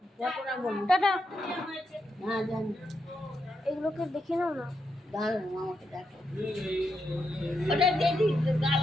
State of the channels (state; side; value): normal; both; correlation 0.83